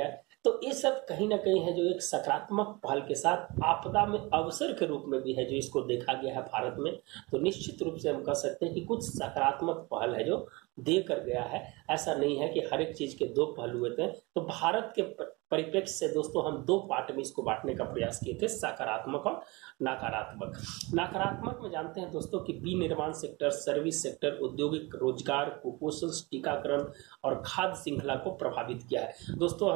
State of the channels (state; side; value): quieter; left; 24.9 dB